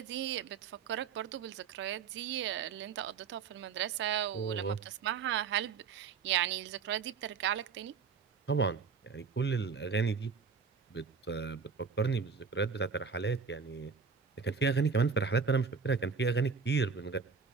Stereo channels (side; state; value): left; quieter; 5.6 dB